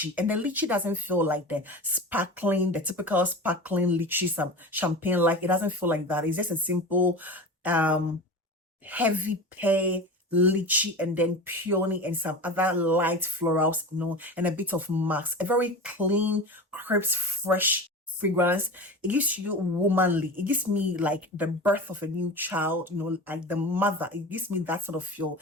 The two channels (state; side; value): normal; both; correlation 0.30